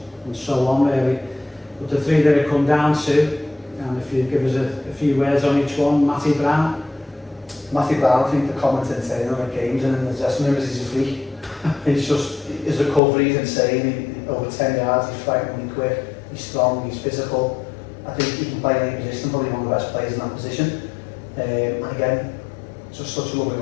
and so on really. But the 3 that it come down to, and if you give us a few words on each one, Matty Brown. Matthew Brown, I think the commenting saying on the games and in the dressing room is he's a freak. He's just, his recovery is insane. Over 10 yards, he's frighteningly quick, he's strong, he's physical. I think he can play in any position, probably one of the best players in that position. And again, just such a lovely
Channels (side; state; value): right; drops out; at 13.0 s